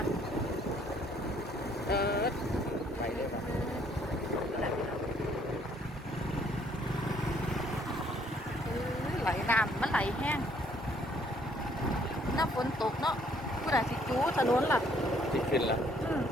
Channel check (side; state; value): both; normal; correlation 0.64